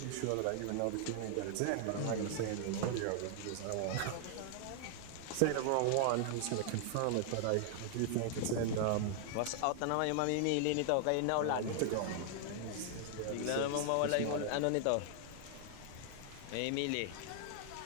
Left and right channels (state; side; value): different; both; correlation 0.00